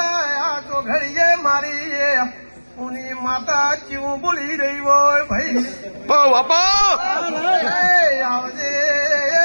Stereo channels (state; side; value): inverted; both; correlation -1.00